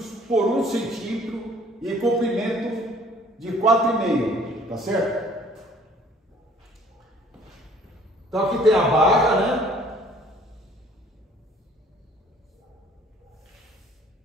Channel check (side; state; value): both; normal; correlation 0.56